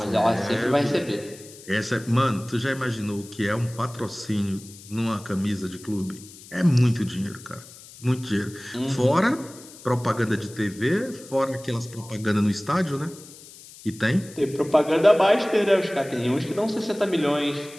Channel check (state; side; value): noise; left; hiss, 19 dB below the sound